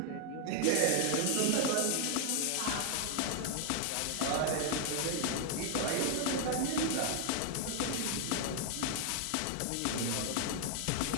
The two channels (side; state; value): both; different; correlation 0.00